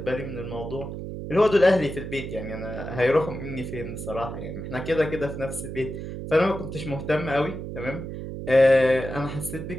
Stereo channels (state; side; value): noise; right; hum, 7 dB below the sound